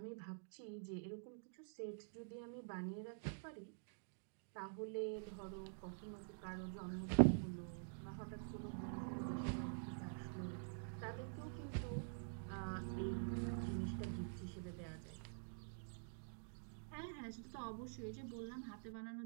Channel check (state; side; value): silent; left; digital silence